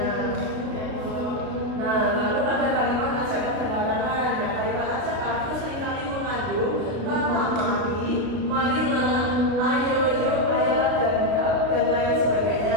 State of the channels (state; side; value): late; left; 33 ms